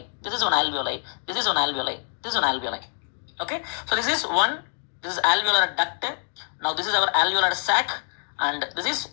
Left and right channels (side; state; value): right; silent; 55 dB below the other